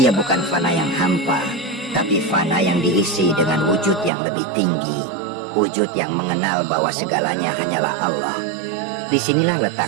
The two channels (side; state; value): left; drops out; at 4.1 s